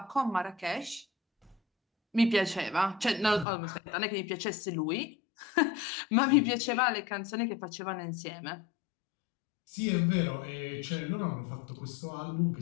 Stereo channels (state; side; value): drops out; right; at 3.5 s